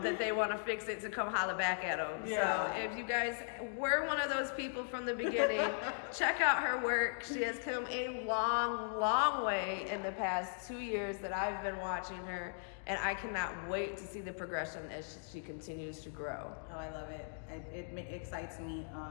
that they want to fix it to come holler back at them. Yeah. So if you guys were one of those people from the beginning, check out her work. She has come a long, long way in the past 2 years that I've been watching her, and I cannot wait to see the progression as she continues to grow. Oh, I love it. It excites me.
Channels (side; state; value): right; silent; digital silence